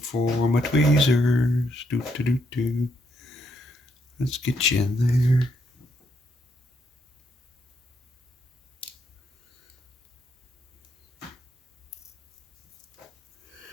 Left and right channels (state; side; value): normal; both; correlation 0.76